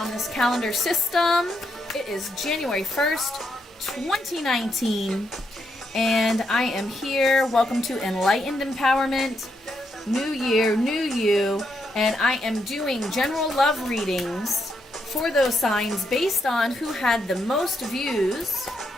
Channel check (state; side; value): normal; both; correlation 0.80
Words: this calendar system. It is January 1st, 2019, and I am here. Welcome to Enlightened Empowerment. New year, new you, and I am doing general love readings for those signs based on who had the most views